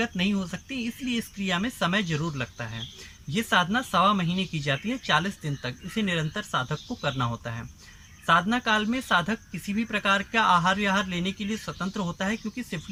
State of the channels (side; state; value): both; identical; correlation 1.00